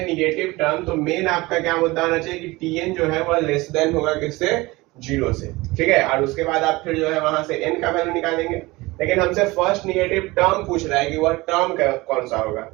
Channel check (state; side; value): quieter; left; 21.5 dB